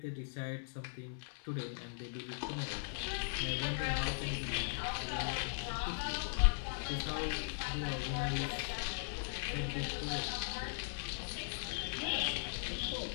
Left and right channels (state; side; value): silent; right; 52 dB below the other